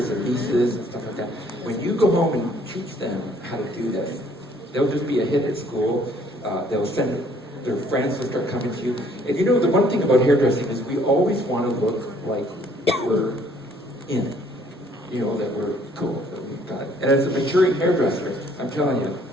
or nieces and stuff like that, when you go home and teach them how to do this, they'll just be a hit at school. They'll send their friends will start coming to you. And you know, the one thing about hairdressing is we always want to look like we're in it. You know, that we're cool, that we've got it. And as a maturing hairdresser, I'm telling you,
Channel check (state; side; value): normal; both; correlation 0.61